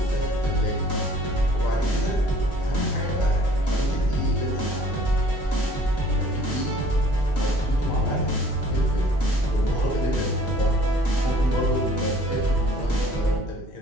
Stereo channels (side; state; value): both; normal; correlation 0.54